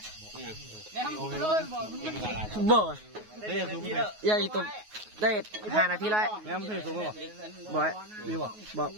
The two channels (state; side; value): late; left; 9.4 ms